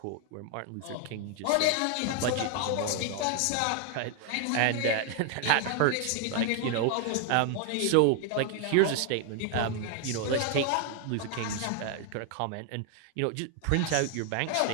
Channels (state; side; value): different; both; correlation 0.00